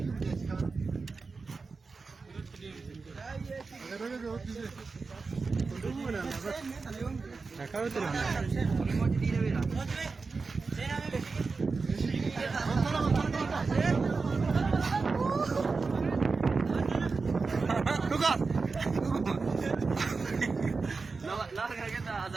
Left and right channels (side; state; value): left; quieter; 4.3 dB